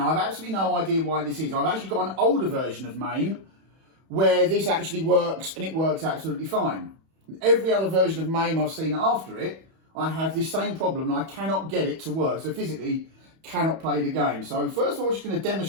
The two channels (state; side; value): late; left; 31 ms